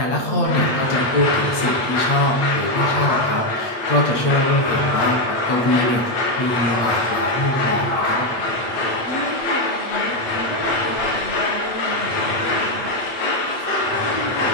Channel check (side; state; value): right; late; 8.6 ms